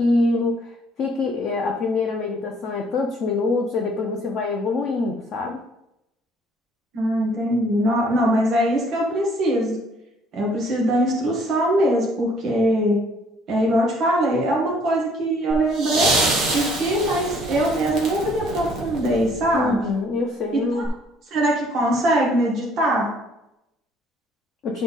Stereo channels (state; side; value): normal; both; correlation 0.61